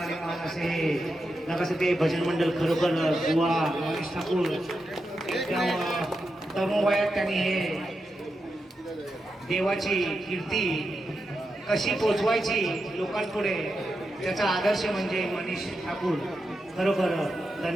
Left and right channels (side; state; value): both; normal; correlation 0.87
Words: आणि मान असे नकासे ते भजन मंडळ खरोखर बुवा मनीष ठाकूर एकदम तरुण वयात त्यांनी हे देवाची कीर्ती कशी पोचवायची लोकांपुढे त्याचा आदर्श म्हणजे मनीष ठाकूर. खरोखर